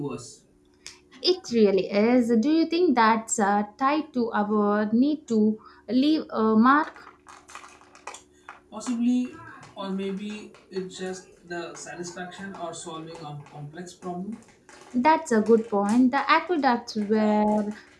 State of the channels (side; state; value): both; identical; correlation 1.00